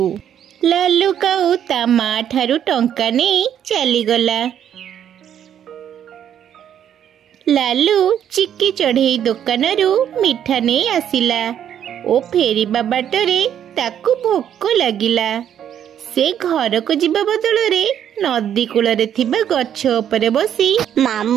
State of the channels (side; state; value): left; quieter; 9.6 dB